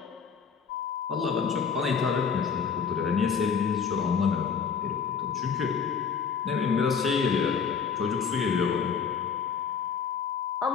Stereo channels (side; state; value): right; quieter; 6.3 dB